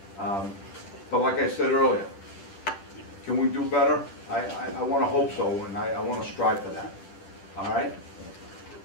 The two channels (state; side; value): late; right; 10 ms